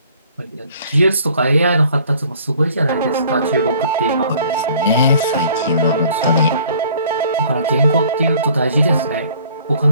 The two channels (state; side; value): inverted; both; correlation -0.54